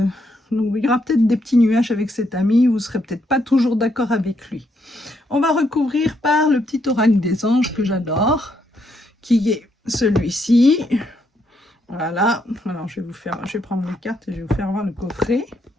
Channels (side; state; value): both; normal; correlation 0.76